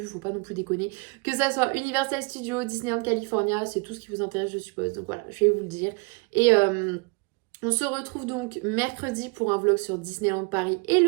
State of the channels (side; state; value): left; quieter; 29.9 dB